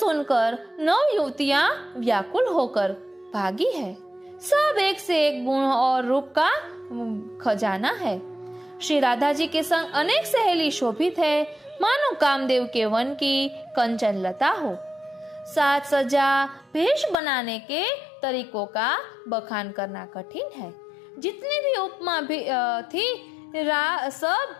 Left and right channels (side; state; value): right; drops out; at 17.2 s